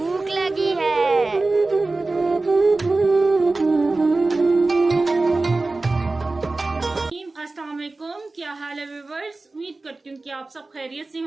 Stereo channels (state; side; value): quieter; left; 3.3 dB